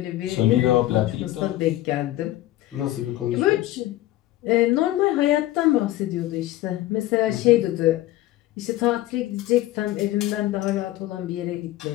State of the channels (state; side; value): quieter; right; 15.4 dB